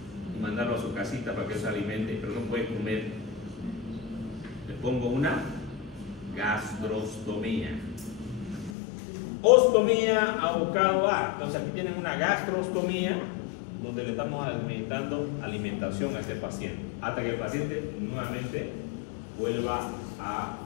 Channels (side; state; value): right; drops out; at 8.8 s